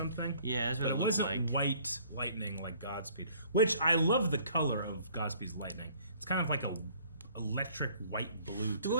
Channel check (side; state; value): both; inverted; correlation -0.57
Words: Yeah, that's what but it wasn't white lightning like Godspeed, which I love the color of Godspeed's lightning. It's kind of like a electric white blue. Dude, what